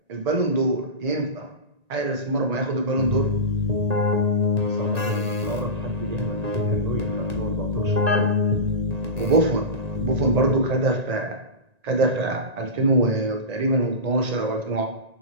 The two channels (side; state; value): left; late; 1.9 ms